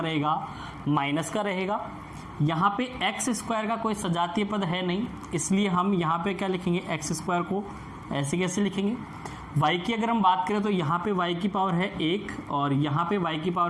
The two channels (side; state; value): both; identical; correlation 1.00